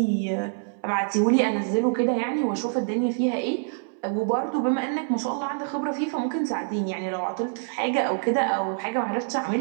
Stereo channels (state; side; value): silent; left; 61 dB below the other